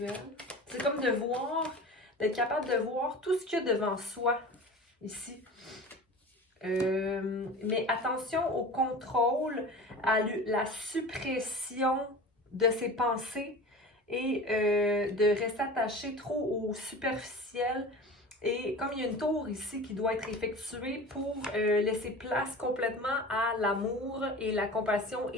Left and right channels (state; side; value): normal; both; correlation 0.36